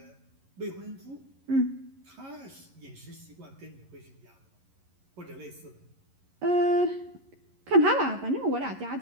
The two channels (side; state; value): left; late; 11 ms